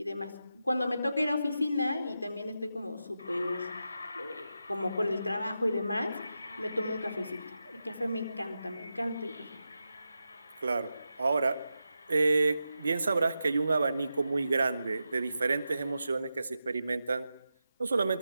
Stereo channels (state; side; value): inverted; both; correlation -0.89